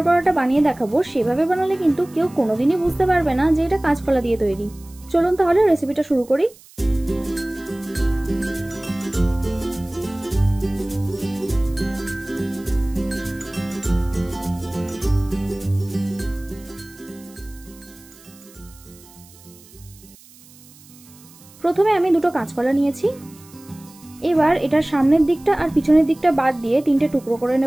বড়াটা বানিয়ে দেখাবো সেভাবে বানালে কিন্তু কেউ কোনোদিনই বুঝতে পারবে না যে এটা কাঁচকলা দিয়ে তৈরি। চলুন তাহলে রেসিপিটা শুরু করি। প্রথমে আমি দুটো কাঁচকলা নিয়েছি। এবার এটার সামনের দিকটা আর পিছনের দিকটা বাদ দিয়ে তিনটে টুকরো করে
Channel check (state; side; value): noise; right; hiss, 24 dB below the sound